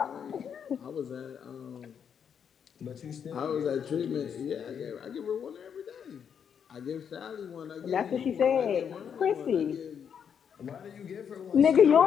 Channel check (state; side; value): quieter; right; 7.7 dB